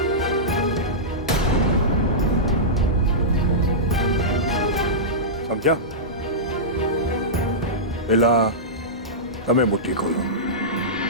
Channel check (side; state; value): both; normal; correlation -0.14